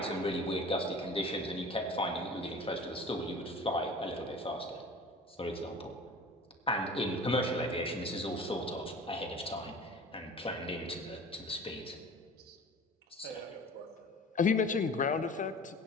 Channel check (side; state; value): both; normal; correlation 0.41